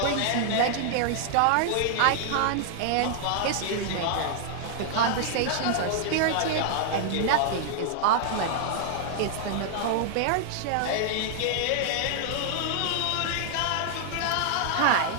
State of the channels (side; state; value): both; different; correlation -0.01